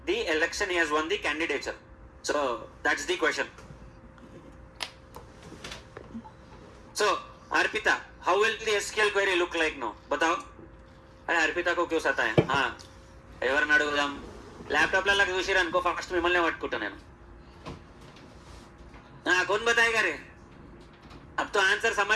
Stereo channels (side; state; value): both; identical; correlation 1.00